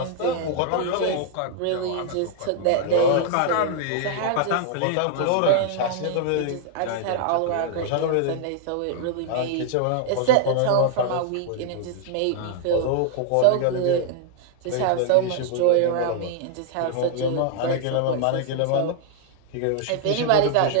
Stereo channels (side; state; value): both; different; correlation 0.00